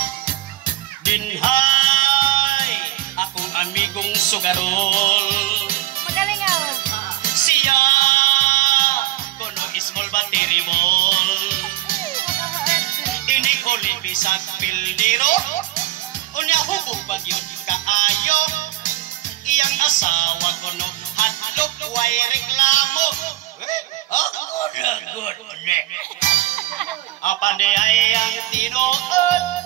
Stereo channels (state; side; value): quieter; left; 15.3 dB